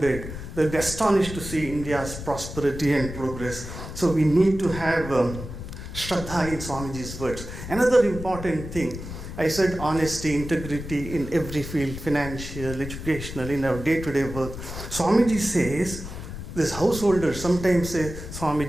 They'll be astonished to see India's prosperity and progress. So we need to have Shraddha in Swamiji's words. Another important thing, I said honesty, integrity in every field, financial, educational, in our day-to-day work. Swamiji says, this householders sometimes say,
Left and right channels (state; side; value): noise; left; rumble, 9 dB below the sound